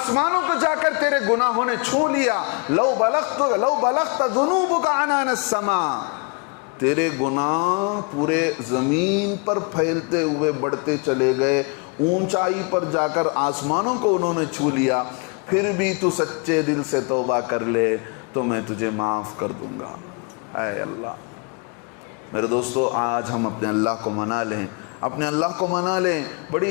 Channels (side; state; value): right; quieter; 33.2 dB